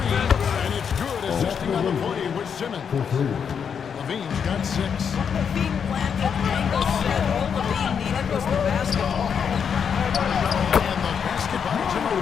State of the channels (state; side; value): quieter; right; 7.1 dB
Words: and it's good. Assisting on the play with Simmons. Levine's got 6. Levine planted angle set. All Levine needed was the basketball. And the basketball to